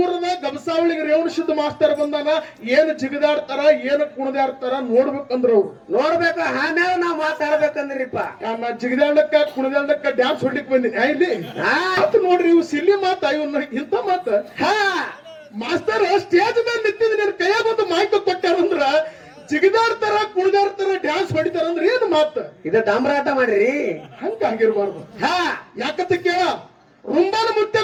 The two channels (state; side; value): identical; both; correlation 1.00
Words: ಊರದ ಗಬಸಾವಳಿಗೆ ರೇವಣಸಿದ್ದ ಮಾಸ್ತರ್ ಬಂದಾನ. ಏನ್ ಜಿಗದಾಡ್ತಾರ ಏನ್ ಕುಣದಾಡ್ತಾರ ನೋಡ್ಬೇಕಂದ್ರ ಅವ್ರು ನೋಡ್ಬೇಕು. ಆಮೇಲೆ ನಾವ್ ಮಾತಾಡ್ಬೇಕಂದ್ರಿಪ್ಪ. ನಾ ಜಿಗದಾಡಕ್ಕ ಕುಣದಾಡಕ್ಕ ಡ್ಯಾನ್ಸ್ ಹೊಡ್ಲಿಕ್ ಬಂದಿನಿ ಇಲ್ಲಿ ನೋಡ್ರಿ. ಇವ್ ಸಿಲ್ಲಿ ಮಾತ ಇವನ್ನ ಇಂತ ಮಾತ ಮಾಸ್ತರ್ ಸ್ಟೇಜ್ ಮೇಲೆ ನಿಂತಿದ್ ನಿನ್ ಕೈಯಾಗ ಒಂದು ಮಾಹಿತಿ ಕೊಟ್ಟಾರಂದ್ರ ಜಿಗದಾಡ್ತಾರ ಕುಣಿದಾಡ್ತಾರ ಡ್ಯಾನ್ಸ್ ಹೊಡಿತಾರ ಅಂದ್ರೆ ಏನ್ ಮಾತ ಇದ ಡಾಮ್ರಾಟ ಮಾಡ್ರಿ. ಹಂಗಾಗಿರ್ಬಾರ್ದು. ಯಾಕಂತ ಕೇಳ ರುಂಬಾನ ಮುತ್ತೆ